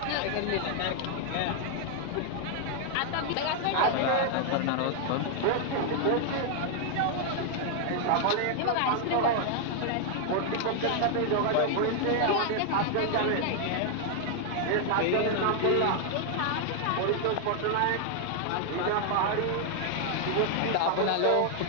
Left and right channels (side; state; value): both; different; correlation 0.00